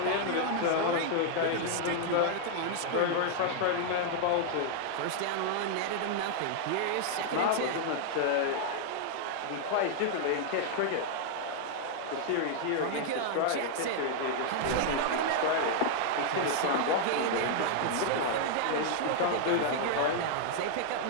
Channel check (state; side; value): different; both; correlation -0.01